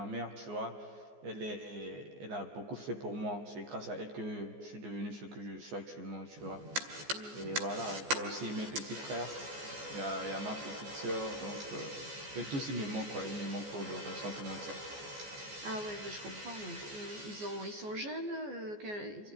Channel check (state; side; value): late; left; 14 ms